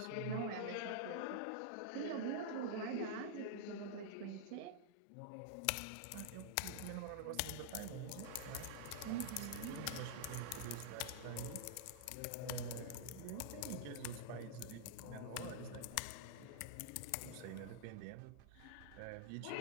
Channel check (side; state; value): both; different; correlation -0.02